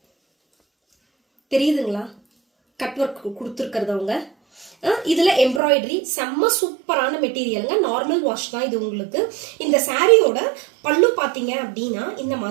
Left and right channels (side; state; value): left; drops out; at 5.6 s